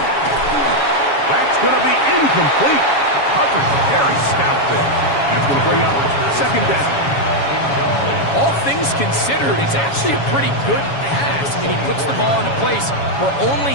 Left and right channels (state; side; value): late; right; 7.2 ms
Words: That's going to be incomplete. Coverage very stout there. That's going to bring up second down. All things considered, it's actually a pretty good pass. I mean, he puts the ball in a place where